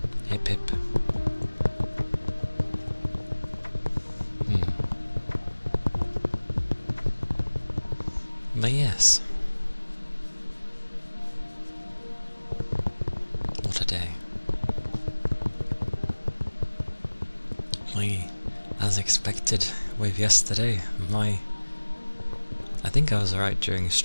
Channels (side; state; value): both; inverted; correlation -1.00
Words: Hip hip. But yes. What a day. As expected with yesterday, I think I was alright during